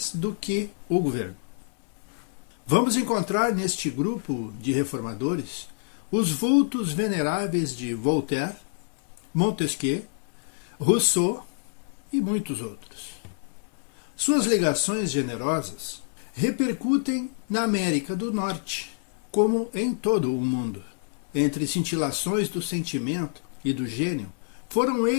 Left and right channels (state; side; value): silent; right; 59 dB below the other